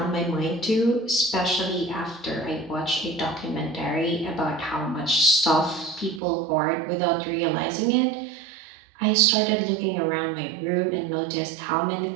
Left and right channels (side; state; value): left; drops out; at 6.2 s